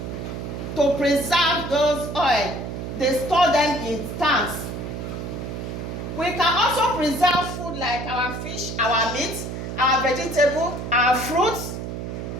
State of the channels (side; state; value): right; noise; hum, 6 dB below the sound